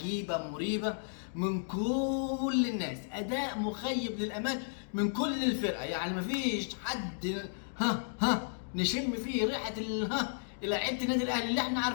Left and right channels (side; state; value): right; silent; digital silence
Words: مريبة من كل الناس، اداء مخيب للامال من كل الفرقة. يعني مفيش حد نشم فيه ريحة لعيبة النادي الاهلي اللي احنا